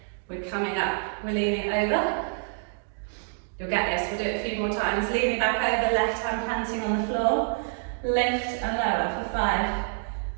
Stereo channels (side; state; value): left; silent; digital silence